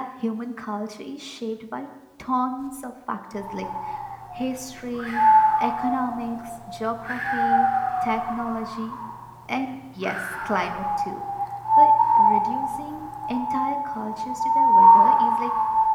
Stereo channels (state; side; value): identical; both; correlation 1.00